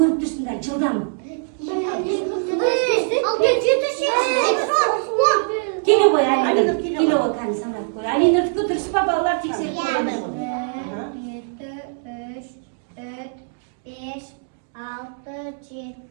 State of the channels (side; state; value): left; silent; digital silence